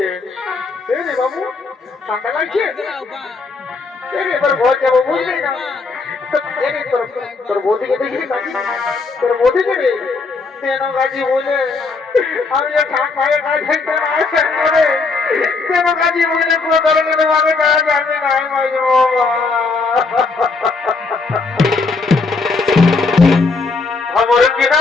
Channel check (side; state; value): right; quieter; 4.1 dB